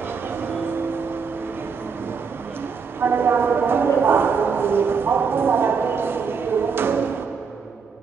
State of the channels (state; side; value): quieter; left; 5.7 dB